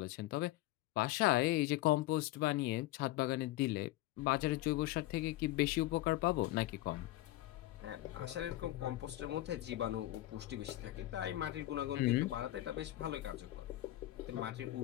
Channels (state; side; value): quieter; right; 16.6 dB